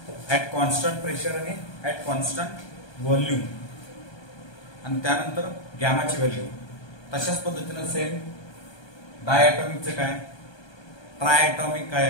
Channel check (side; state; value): right; late; 1.2 ms